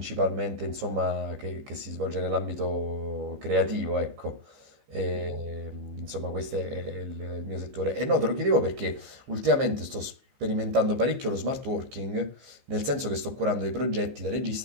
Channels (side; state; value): left; late; 15 ms